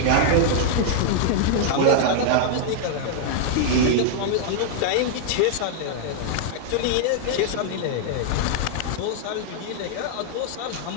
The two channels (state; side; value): different; both; correlation -0.01